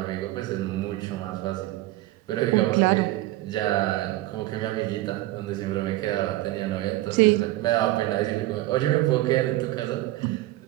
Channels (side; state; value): left; quieter; 17.1 dB